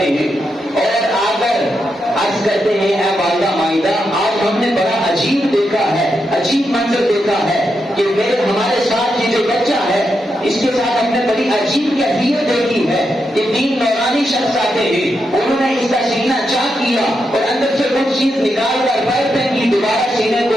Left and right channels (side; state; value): both; normal; correlation 0.84